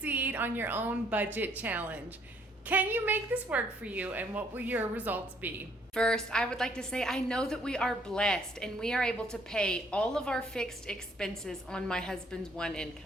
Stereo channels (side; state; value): both; normal; correlation 0.65